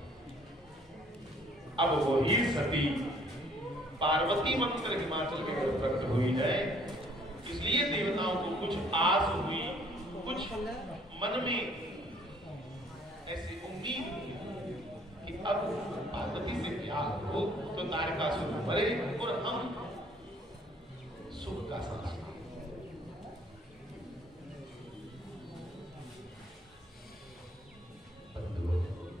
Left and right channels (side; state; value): both; normal; correlation 0.60